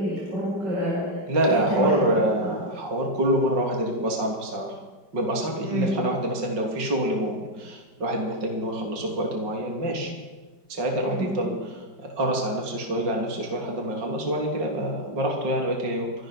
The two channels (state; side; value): late; left; 5.1 ms